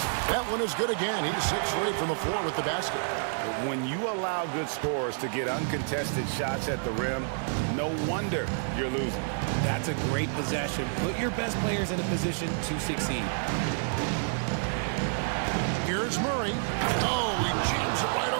That one is good again. He's 6 straight from the floor with the basket. When you allow good scorers to get uncontested shots at the rim, no wonder you're losing. That's a great possession. Put your best players in a position to succeed. Here's Murray. Oh, he jams it right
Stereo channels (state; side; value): silent; left; digital silence